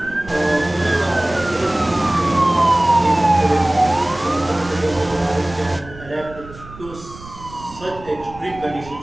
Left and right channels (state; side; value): noise; right; rumble, 18 dB below the sound